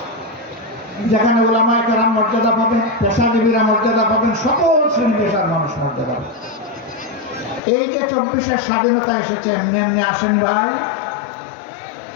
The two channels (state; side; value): drops out; right; at 7.6 s